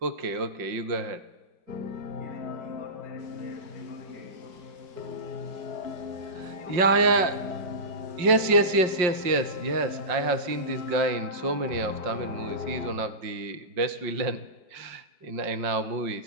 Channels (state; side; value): late; left; 5.6 ms